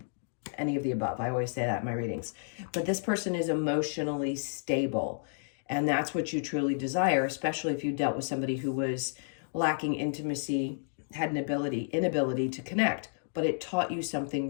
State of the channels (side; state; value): right; silent; digital silence